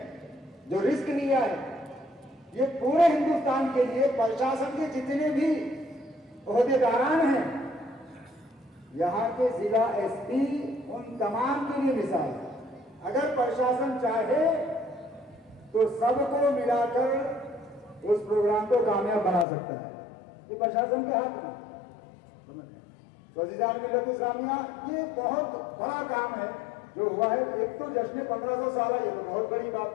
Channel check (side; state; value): right; drops out; at 19.5 s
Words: جو رسک لیا ہے، یہ پورے ہندوستان کے لیے پرشاسن کے جتنے بھی عہدیداران ہیں، یہاں کے ضلع ایس پی، ان تمام کے لیے مثال ہے. اگر پرشاسن چاہے تو سب کو ملا کر اس پروگرام کو کامیاب بنا سکتا ہے. یہ پرشاسن کے ہاتھ میں. تو عزیزان ملت اسلامیہ، یہ بہت بڑا کام ہے جو ہوا ہے. ایک تو جشن 1500 سالہ، یہ تو بہت بڑی